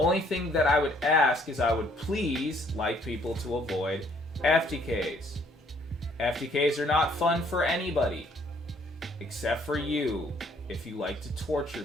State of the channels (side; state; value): both; normal; correlation 0.64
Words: thing that I would ask is I would please like people to avoid FTKs. FTKs are not fun for anybody, except for you, if you like to torture